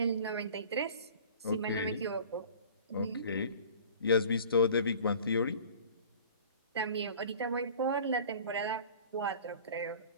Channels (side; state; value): both; inverted; correlation -0.44